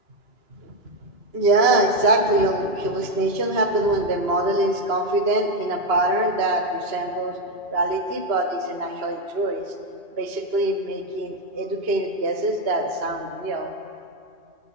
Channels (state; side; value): late; left; 2.9 ms